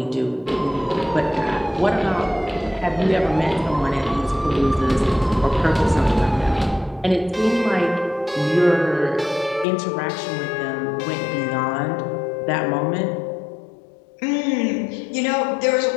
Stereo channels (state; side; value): drops out; right; at 9.7 s